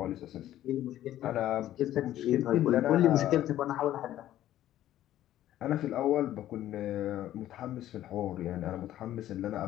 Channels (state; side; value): quieter; right; 13.0 dB